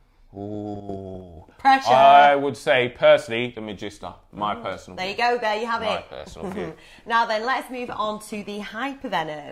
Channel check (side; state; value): both; identical; correlation 1.00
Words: Ooh. Pressure. I would say, personally, the Magista. My personal view. There you go, there you have it. My personal view. Now then, let's move on to the